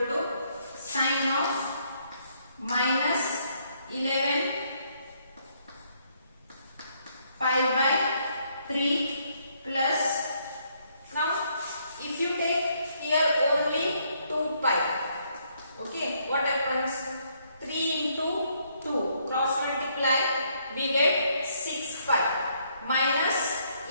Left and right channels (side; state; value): both; inverted; correlation -0.71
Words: to sine of minus 11 pi by 3 plus, now if you take here only 2 pi, okay, what happens? 3 into 2 cross multiply, we get 6 pi minus